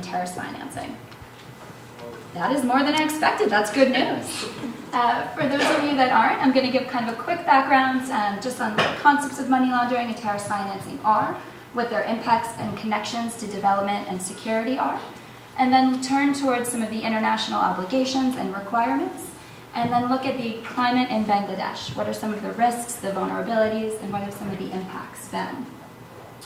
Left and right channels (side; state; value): both; identical; correlation 1.00